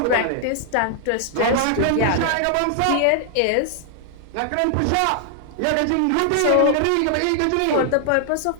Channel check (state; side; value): different; both; correlation 0.00